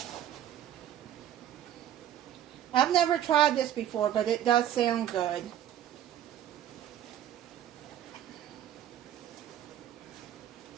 I've never tried this before, but it does sound good.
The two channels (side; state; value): left; quieter; 11.2 dB